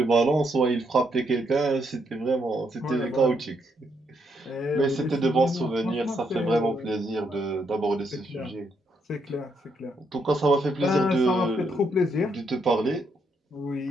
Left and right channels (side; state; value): both; normal; correlation 0.76